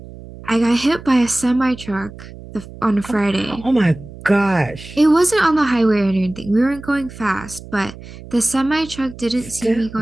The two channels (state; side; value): noise; right; hum, 16 dB below the sound